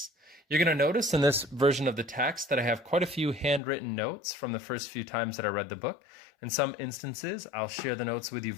You're going to notice in this version of the text that I have quite a few handwritten notes from the first few times that I read the book. In some instances, I'll share the notes with you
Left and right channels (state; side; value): drops out; right; at 3.6 s